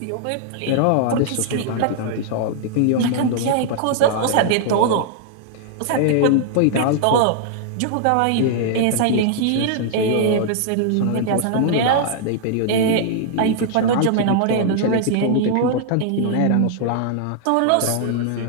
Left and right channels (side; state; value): both; different; correlation -0.01